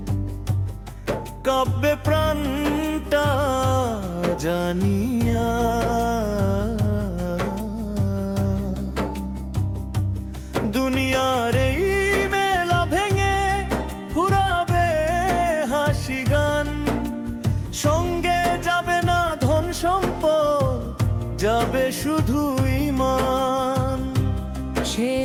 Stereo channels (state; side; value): identical; both; correlation 1.00